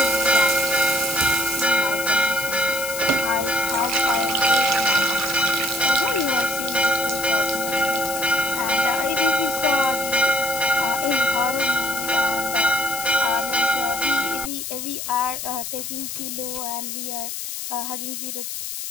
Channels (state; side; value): noise; left; hiss, 6 dB below the sound